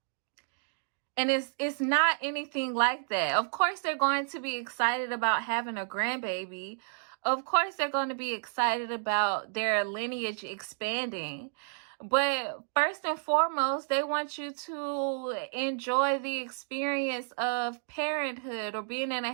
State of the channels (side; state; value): left; silent; digital silence